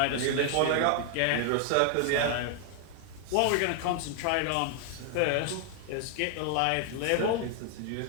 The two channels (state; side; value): different; both; correlation 0.00